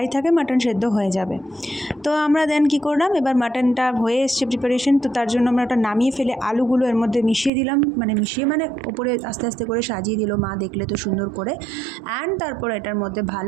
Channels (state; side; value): drops out; left; at 7.5 s